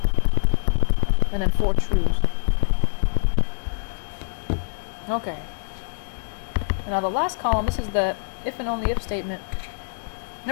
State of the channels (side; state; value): right; silent; digital silence